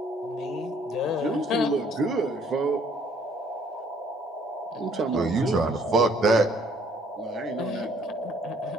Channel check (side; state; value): both; normal; correlation 0.62